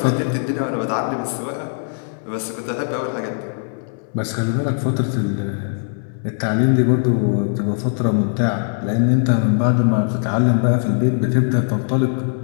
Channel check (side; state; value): right; silent; 66 dB below the other